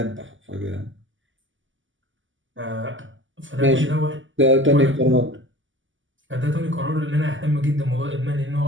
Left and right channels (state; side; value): late; left; 0.56 ms